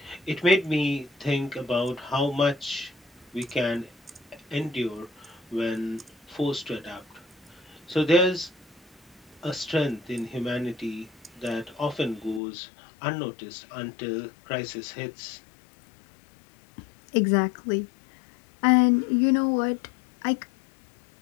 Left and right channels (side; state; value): right; drops out; at 12.4 s